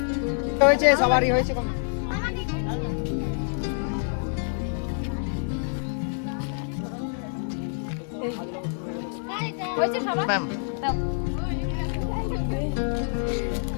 হয়েছে সবারই হয়েছে কম ম্যাম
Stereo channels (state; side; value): silent; right; digital silence